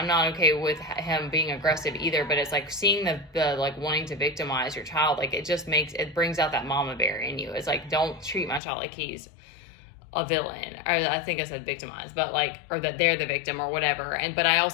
not okay with him being aggressive either. But it's like seeing the like wanting to victimize your child, like it brings out that mama bear in you. It's like, don't treat my child like he's a villain, or I think I said victimized, but like, or that they're the victim or whatever. But I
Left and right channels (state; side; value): drops out; right; at 8.6 s